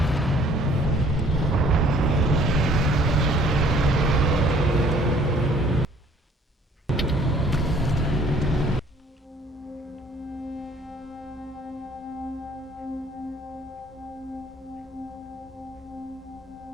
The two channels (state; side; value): normal; both; correlation 0.58